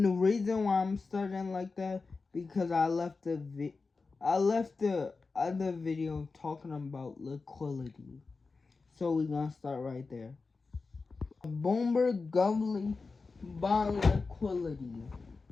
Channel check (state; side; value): quieter; right; 4.2 dB